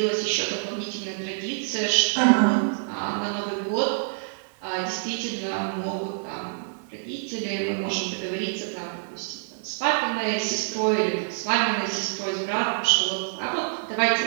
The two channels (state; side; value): silent; left; 57 dB below the other